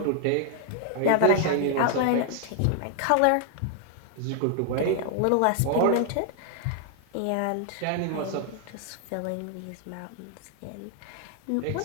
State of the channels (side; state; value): both; different; correlation 0.00